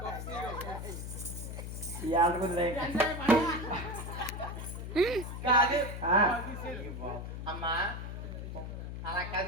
ఈ ఆటకుంది కాదు అమ్మా అలా కాదు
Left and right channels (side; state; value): left; noise; hum, 7 dB below the sound